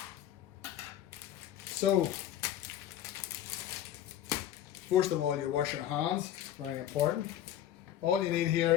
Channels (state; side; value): quieter; right; 11.5 dB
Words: So, first of all, you wash your hands, very important. All you need here